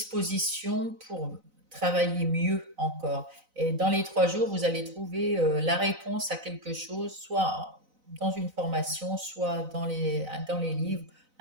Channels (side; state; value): left; late; 4.0 ms